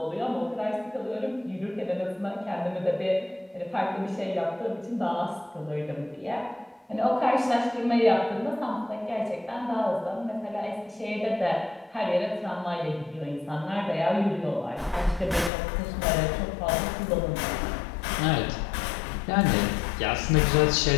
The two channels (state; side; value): drops out; right; at 15.5 s